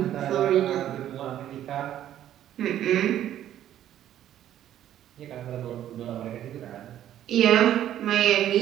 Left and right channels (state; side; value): quieter; left; 11.6 dB